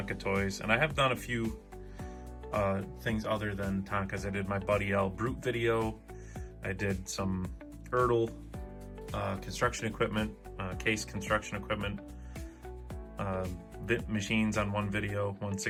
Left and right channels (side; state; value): both; identical; correlation 1.00